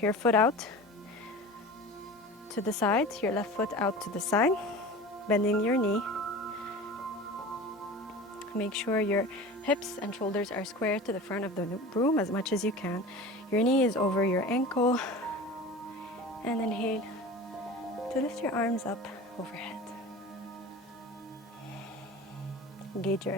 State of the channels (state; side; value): normal; both; correlation 0.36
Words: your foot out to the side, your left foot out to the side, bending your knee. Make sure your hips and shoulders are square to the front of the room as much as you can. Your knee is over your ankle. And inhale to lift your arms up overhead. Engage your